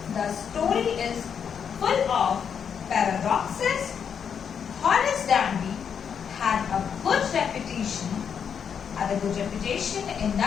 The story is full of paradoxes. Horace Danby had a good reputation in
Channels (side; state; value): right; quieter; 7.3 dB